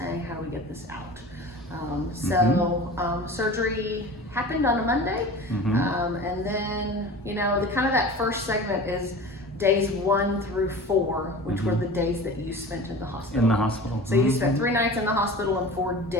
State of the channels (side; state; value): both; normal; correlation 0.36